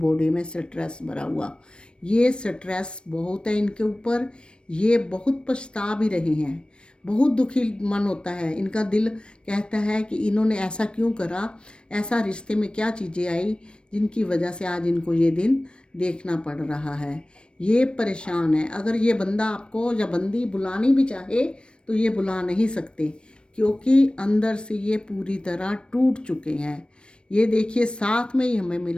में स्ट्रेस भरा हुआ, ये स्ट्रेस बहुत है इनके ऊपर, ये बहुत पछता भी रहे हैं, बहुत दुखी मन होता है इनका। दिल कहता है कि इन्होंने ऐसा क्यों करा, ऐसा रिश्ते में क्या चीज़ें आई जिनकी वजह से आज इनको ये दिन देखना पड़ रहा है। ये परेशान है। अगर ये बंदा आपको या बंदी बुलानी भी चाहे तो ये बुला नहीं सकते, क्योंकि अंदर से ये पूरी तरह टूट चुके हैं। ये देखिए साथ में ही हमें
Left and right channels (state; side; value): late; right; 0.055 ms